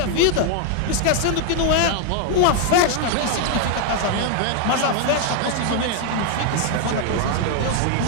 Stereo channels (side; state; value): both; different; correlation 0.01